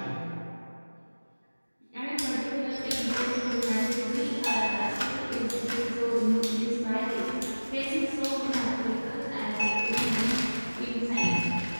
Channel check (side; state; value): both; inverted; correlation -1.00